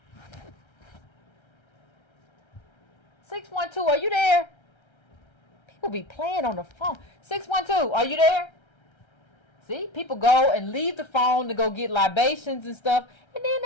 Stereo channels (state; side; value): late; right; 1.3 ms